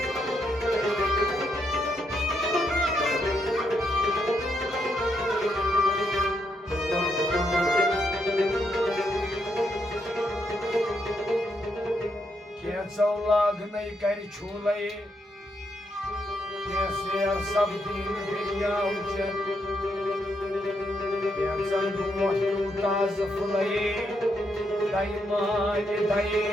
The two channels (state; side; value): normal; both; correlation 0.79